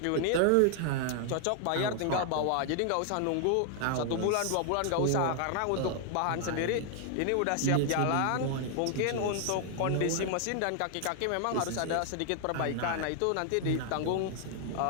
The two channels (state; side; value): different; both; correlation 0.00